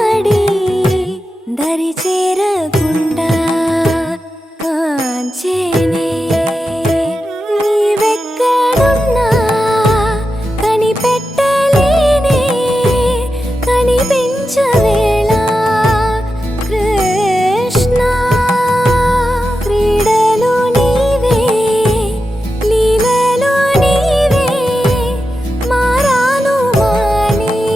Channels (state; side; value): normal; both; correlation 0.90